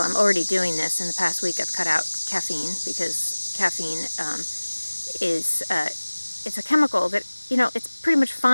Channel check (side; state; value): both; inverted; correlation -1.00